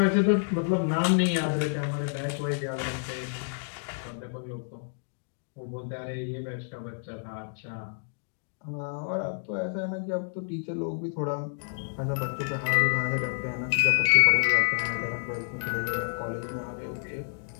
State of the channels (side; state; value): right; silent; digital silence